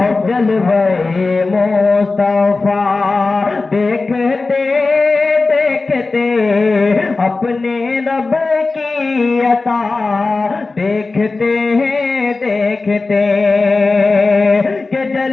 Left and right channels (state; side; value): quieter; right; 3.7 dB